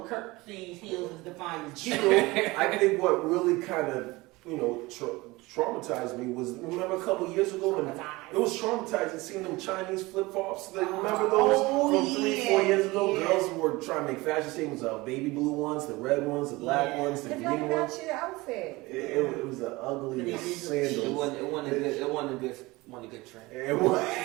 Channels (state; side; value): quieter; left; 21.7 dB